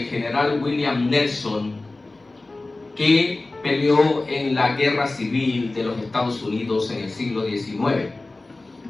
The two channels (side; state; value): right; quieter; 3.1 dB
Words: general William Nelson, que peleó en la guerra civil de los Estados Unidos en el siglo XIX.